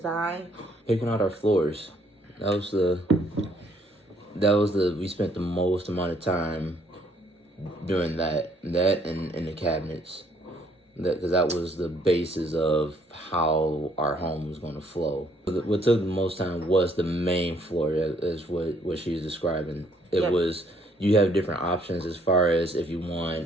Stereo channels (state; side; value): normal; both; correlation 0.66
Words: Picking out our floors. We spent the most amount of time doing that and the cabinets. Because that was the basis of how our home was going to flow. What took the most time was the main floor, is what she's describing. It was, you have different options as far as if you